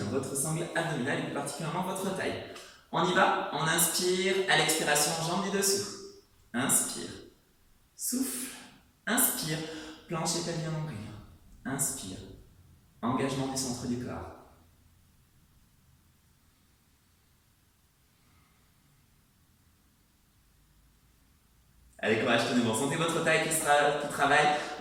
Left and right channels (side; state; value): both; identical; correlation 1.00